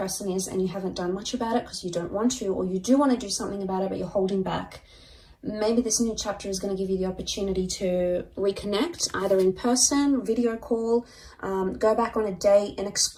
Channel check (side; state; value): both; identical; correlation 1.00